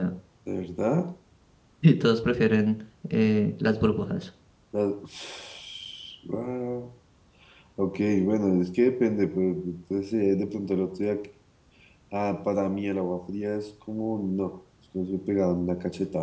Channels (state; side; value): identical; both; correlation 1.00